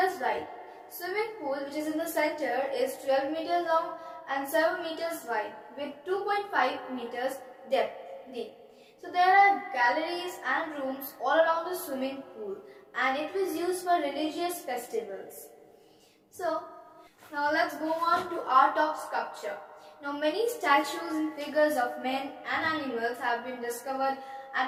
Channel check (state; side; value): identical; both; correlation 1.00